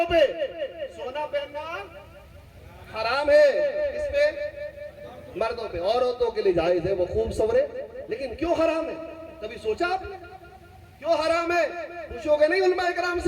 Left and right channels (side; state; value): both; identical; correlation 1.00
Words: پہ، سونا پہننا حرام ہے، اس پہ مردوں پہ، عورتوں کے لیے جائز ہے، وہ خوب سورے، لیکن کیوں حرام ہے؟ کبھی سوچا آپ نے کیوں حرام ہے؟ پوچھو گے نہیں علماء کرام